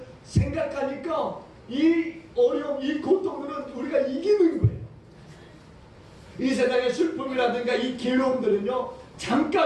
생각하니까 이 어려움, 이 고통들은 우리가 이기는 거예요. 이 세상의 슬픔이라든가 이 괴로움들은요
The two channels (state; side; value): identical; both; correlation 1.00